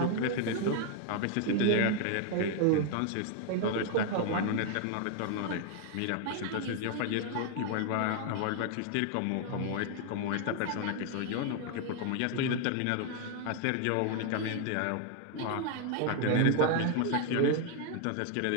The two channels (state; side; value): different; both; correlation 0.00